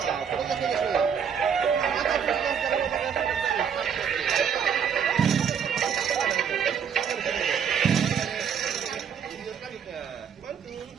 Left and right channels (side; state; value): left; quieter; 7.4 dB